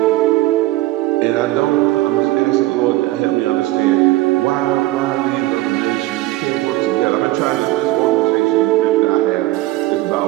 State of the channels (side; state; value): left; quieter; 17.8 dB